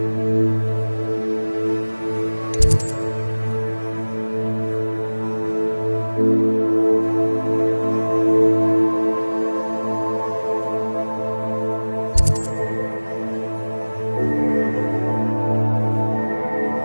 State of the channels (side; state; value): both; inverted; correlation -1.00